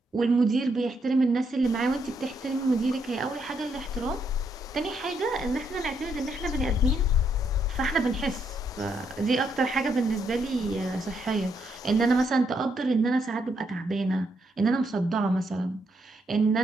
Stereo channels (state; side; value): normal; both; correlation 0.76